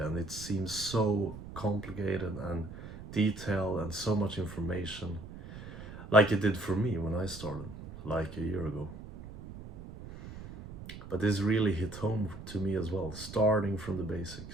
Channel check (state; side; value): noise; right; rumble, 13 dB below the sound